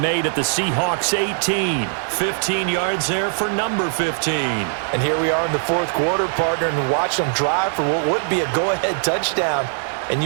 at the Seahawks 18. 15 yards there for number 15. And here we are in the fourth quarter, partner, and watch them drive for what would be a go-ahead touchdown. And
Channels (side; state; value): left; silent; 65 dB below the other